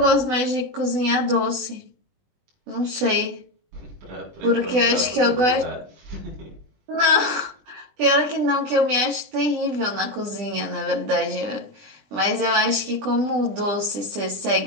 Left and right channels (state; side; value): late; left; 20 ms